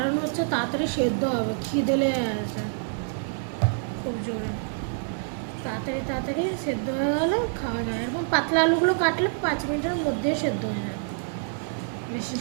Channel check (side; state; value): left; silent; digital silence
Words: হচ্ছে তাড়াতাড়ি সেদ্ধ হবে। খিদে লেগে আছে খুব জোরে। তাড়াতাড়ি তাড়াতাড়ি সেদ্ধ হয়ে গেলে খাওয়া যায়। এরকম পাতলা আলুগুলো কাটলে 5 মিনিটের মধ্যে সেদ্ধ হয়ে যায়, বেশি